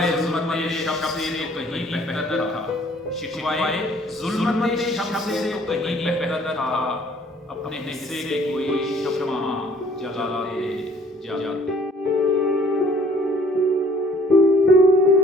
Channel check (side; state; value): both; normal; correlation 0.57